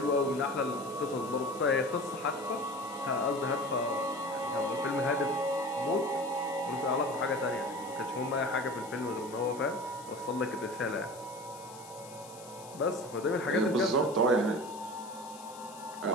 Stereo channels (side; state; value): left; noise; hiss, 18 dB below the sound